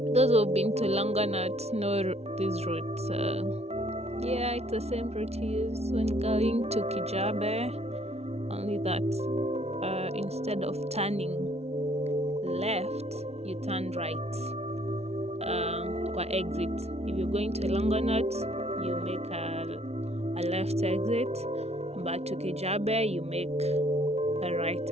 Those who've been to Longonot know these routes. Yeah, it's the same route you use when going to Kijabe, only that instead of turning left, you turn right. Kwa exit. If you're going to Longonot, you make a left exit, but to Kijabe, you make a right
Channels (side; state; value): left; late; 0.31 ms